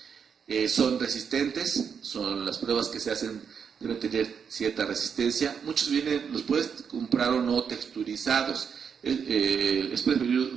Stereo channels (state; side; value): quieter; left; 6.8 dB